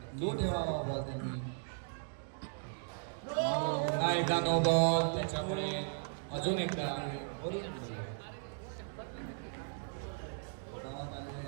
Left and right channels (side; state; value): left; silent; digital silence